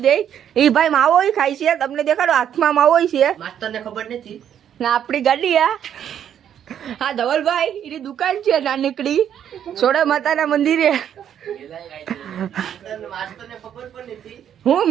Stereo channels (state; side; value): quieter; left; 9.5 dB